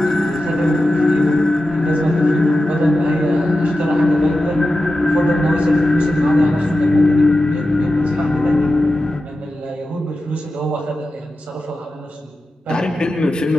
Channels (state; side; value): normal; both; correlation 0.92